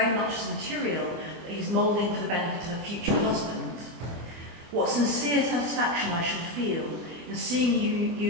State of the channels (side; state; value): left; late; 24 ms